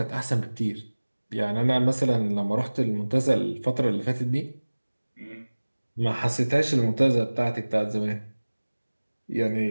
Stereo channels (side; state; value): both; inverted; correlation -1.00